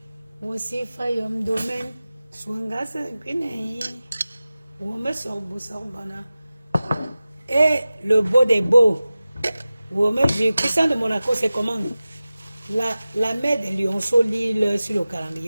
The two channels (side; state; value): both; inverted; correlation -0.96